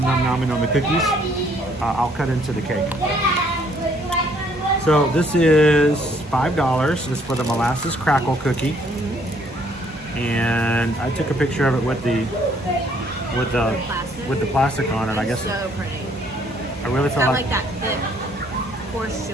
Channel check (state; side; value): normal; both; correlation 0.65